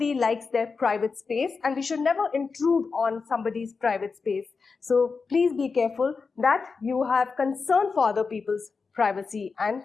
likes their private space and we should never intrude on somebody's private space. So please be careful that you have concern for other people's privacy and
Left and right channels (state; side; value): quieter; right; 4.8 dB